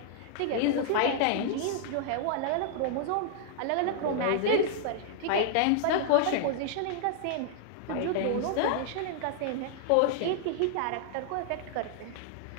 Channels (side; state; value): both; different; correlation -0.01